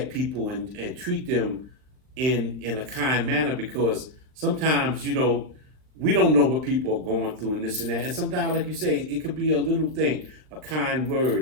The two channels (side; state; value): left; late; 39 ms